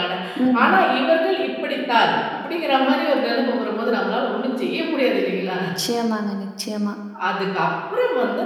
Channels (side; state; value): both; identical; correlation 1.00